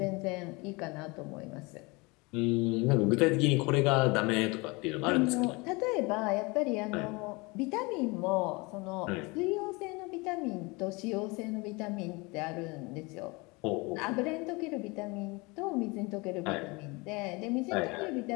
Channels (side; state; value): right; quieter; 26.4 dB